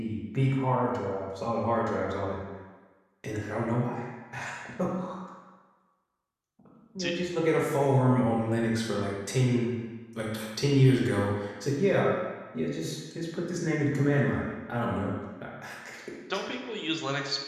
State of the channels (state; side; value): identical; both; correlation 1.00